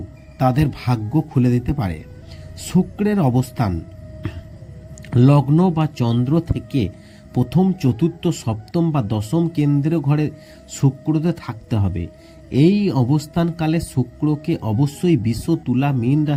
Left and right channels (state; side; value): identical; both; correlation 1.00